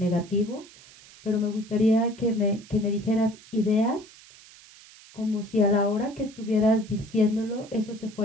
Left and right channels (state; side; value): noise; right; hiss, 22 dB below the sound